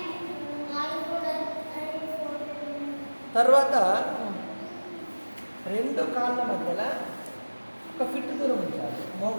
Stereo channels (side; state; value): both; inverted; correlation -1.00